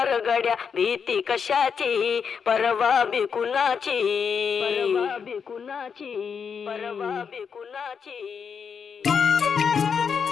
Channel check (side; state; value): right; quieter; 6.5 dB